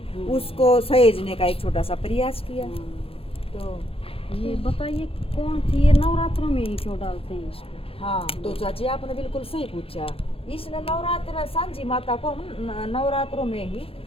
उसको सहेजने का एक छोटा सा प्रयास किया। तो ये बताइए कौन थी ये? नवरात्रों में ही क्यों डालते हैं इसको? हाँ, तो चाची आपने बिल्कुल सही पूछा। इसने नवरात्र सांझी माता को हम नवरात्रों में ही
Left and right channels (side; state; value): right; late; 0.27 ms